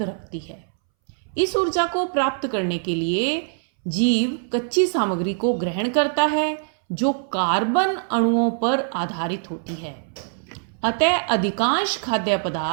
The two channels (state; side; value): silent; left; 63 dB below the other